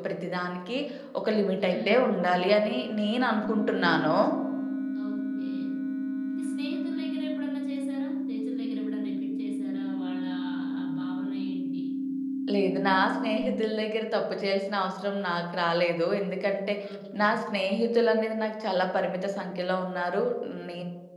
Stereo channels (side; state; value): both; identical; correlation 1.00